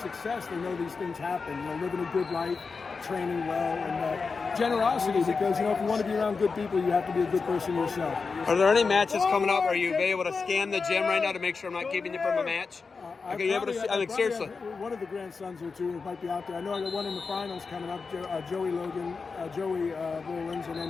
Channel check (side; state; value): right; quieter; 4.7 dB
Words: they know these things happen. You know, living a good life, training well, and generosity. Because, you know, if you want to be around good people, you have to be a good person yourself. Are there any matches coming up? Are you able to scan the gym right now to make sure I'm not keeping you from a match? Are you able to see? I mean, seriously. One of the grandsons or two might be out there. I know I got one in the finals coming up. Joey Rollins, and